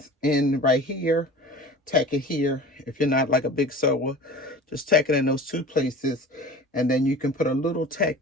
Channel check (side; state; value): both; normal; correlation 0.39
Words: in right here, tack it here. If you're not like a big sewer, just tack it in those 2 places, and then you can put a little tack